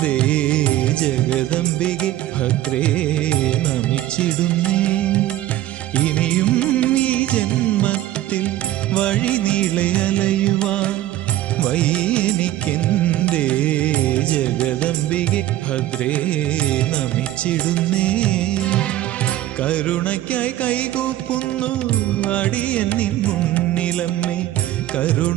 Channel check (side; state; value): left; quieter; 14.3 dB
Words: ജഗദംബികെ ഭദ്രേ നമിച്ചിടുന്നേ. ഇനിയും ഈ ജന്മത്തിൽ വഴി നീളെ അലയുവാൻ വയ്യെനിക്കെന്തേ ജഗദംബികെ ഭദ്രേ നമിച്ചിടുന്നേ. കരുണയ്ക്കായി കൈകൂപ്പുന്നു അടിയൻ നിൻ മുന്നിലമ്മേ.